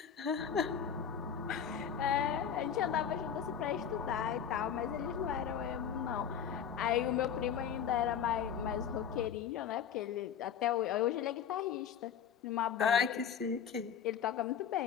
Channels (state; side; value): quieter; right; 8.1 dB